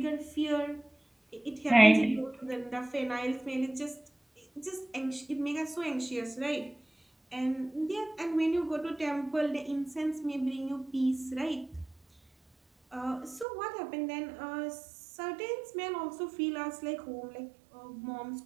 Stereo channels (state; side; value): drops out; left; at 13.5 s